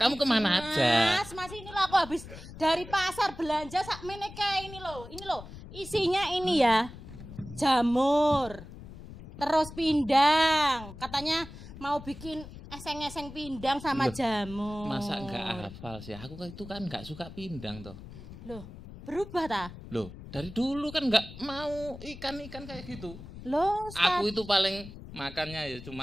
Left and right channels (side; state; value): left; noise; rumble, 14 dB below the sound